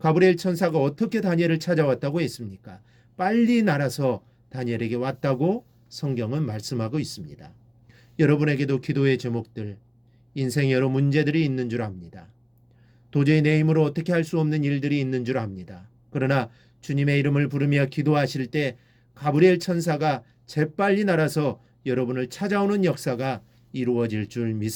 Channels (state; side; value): identical; both; correlation 1.00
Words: 천사가 어떻게 다니엘을 찾아왔다고 했습니까? 빨리 날아서 다니엘에게 왔다고 성경은 말씀하고 있습니다. 여러분에게도 기도의 제목들, 인생에 여러 문제들이 있는 줄 압니다. 도저히 내 힘으로 어떻게 할 수 없는 일들이 있는 줄 압니다. 그러나 주님의 이름을 부르며 기도하실 때 가브리엘 천사가 재빨리 날아서 여러분을 찾아오는 역사가 이루어질 줄